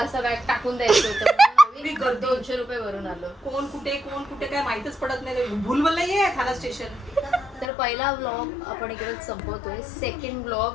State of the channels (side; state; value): right; drops out; at 7.7 s